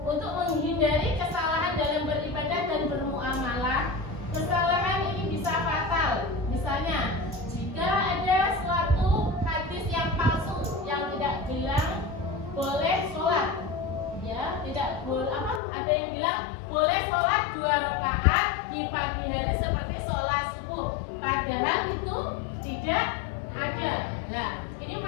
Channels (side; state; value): right; drops out; at 15.6 s